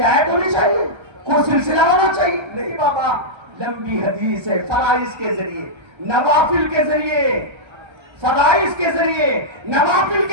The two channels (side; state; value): left; late; 1.3 ms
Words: ہونی چاہیے, کوئی سلسلہ ہونا چاہیے؟ نہیں بابا, لمبی حدیث ہے, فرائض کے ذریعے, نوافل کے ذریعے, فرائض کے ذریعے, نوافل